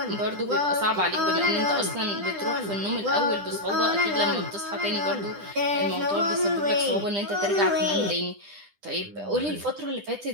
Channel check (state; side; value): late; left; 10 ms